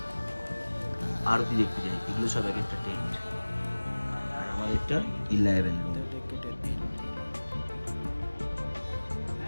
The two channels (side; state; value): both; inverted; correlation -1.00